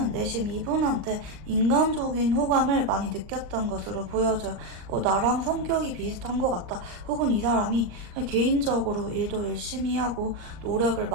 내심 이분한테 인간적인 호감을 많이 느꼈던 것으로 보여져요. 나랑 성격이 비슷한 것 같다, 혹은 이 사람이 개인적으로 일도 열심히 하고 노력을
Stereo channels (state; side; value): late; left; 39 ms